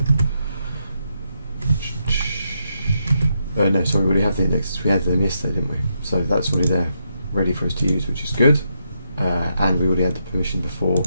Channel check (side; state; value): both; inverted; correlation -0.81